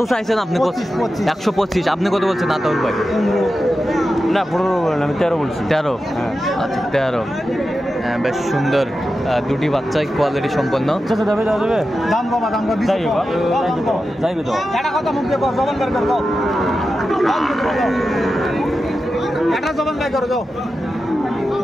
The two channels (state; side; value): normal; both; correlation 0.91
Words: চাইছেন আপনি? 125। আপনি কত বলছেন আতাউর ভাই? না, 15 বললাম, আমি 13 বলছি। 13? আচ্ছা, 13। বেশ সুন্দর দুটি বাচ্চাই, কোয়ালিটি সম্পন্ন।